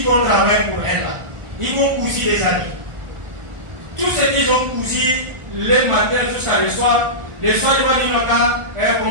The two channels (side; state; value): left; late; 1.4 ms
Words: vont travailler pour elle, là, ils vont couser les habits. Tout ce qu'ils ont cousu le matin jusqu'à le soir, ils vont dire